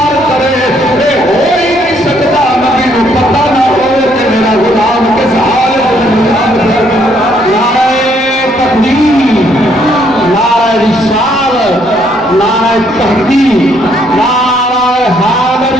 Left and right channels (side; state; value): right; noise; rumble, 26 dB below the sound